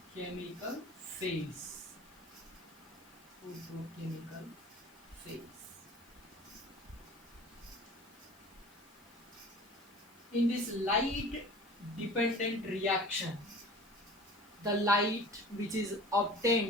phase. Photochemical phase. In this light dependent reaction, the light which is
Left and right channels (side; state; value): left; noise; hiss, 29 dB below the sound